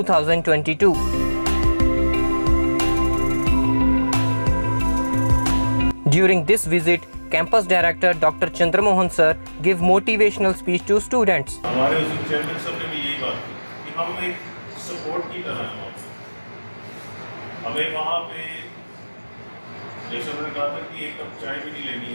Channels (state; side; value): inverted; both; correlation -1.00